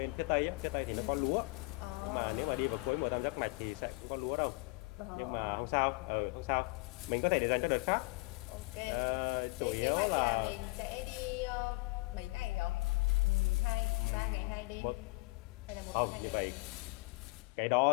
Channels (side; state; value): right; quieter; 26.4 dB